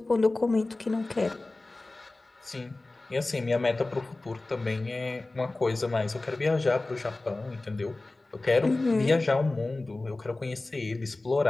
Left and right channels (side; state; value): right; quieter; 3.0 dB